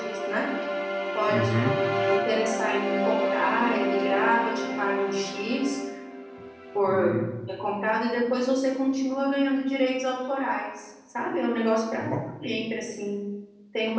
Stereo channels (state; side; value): identical; both; correlation 1.00